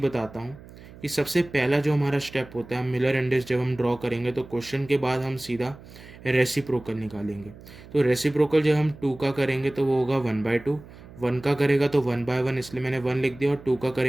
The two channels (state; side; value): noise; right; hum, 19 dB below the sound